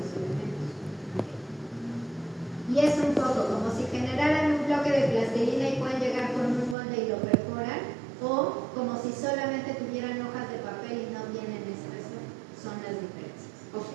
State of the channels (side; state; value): left; drops out; at 6.8 s